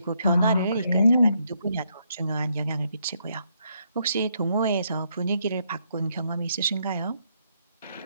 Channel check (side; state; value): both; inverted; correlation -0.75